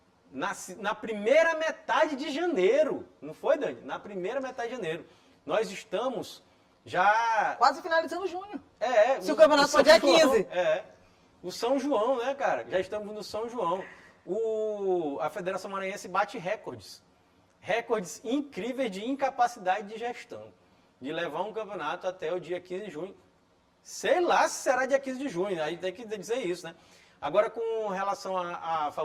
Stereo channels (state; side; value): identical; both; correlation 1.00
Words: na primeira metade de janeiro, não foi, Dani? Na primeira metade de janeiro. Nós estamos já... quase finalizando junho. Se o campeonato campeonato for dia 15. O São João, né, cara? Já estamos no São João. A Federação Maranhense bate recordes incríveis de incapacidade de gestão, de levar um campeonato até o dia 15 de junho, Sei lá se será dia 15 de junho, aí tem que dizer isso, né? Agora, com relação a